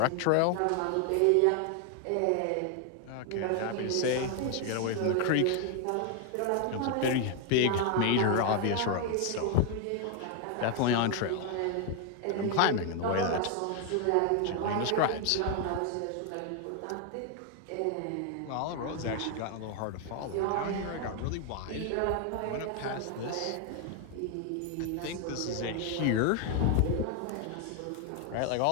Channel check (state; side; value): different; both; correlation 0.01